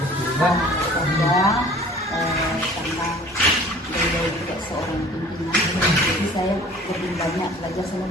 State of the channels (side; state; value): both; normal; correlation 0.48